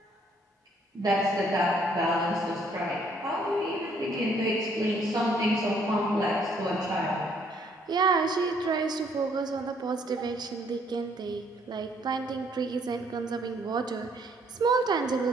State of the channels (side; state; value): both; normal; correlation 0.65